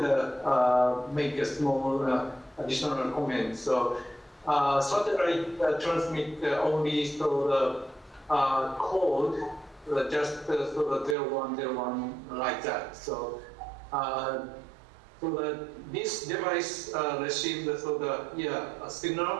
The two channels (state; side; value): drops out; left; at 11.2 s